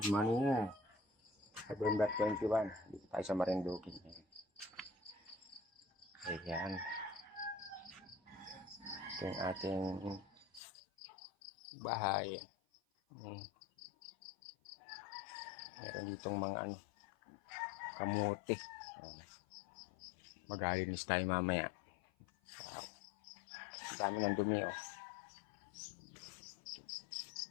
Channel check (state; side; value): drops out; right; at 10.6 s